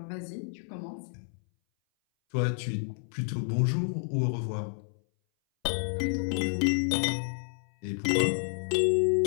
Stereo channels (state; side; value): silent; right; 58 dB below the other